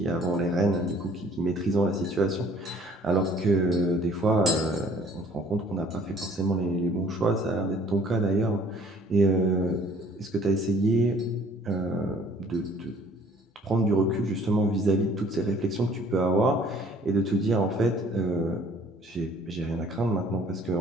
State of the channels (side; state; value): both; normal; correlation 0.56